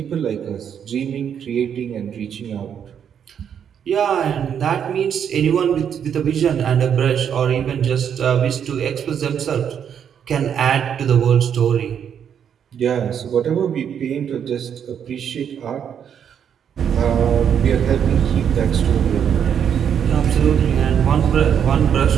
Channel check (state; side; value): quieter; left; 8.3 dB